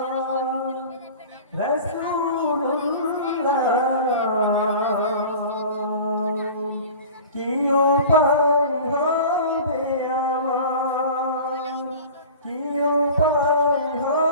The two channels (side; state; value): both; inverted; correlation -0.39